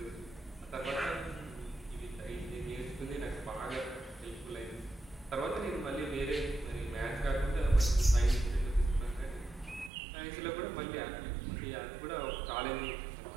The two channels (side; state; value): left; drops out; at 9.9 s